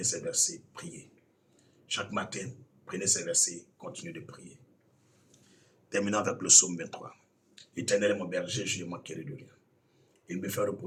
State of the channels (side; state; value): both; identical; correlation 1.00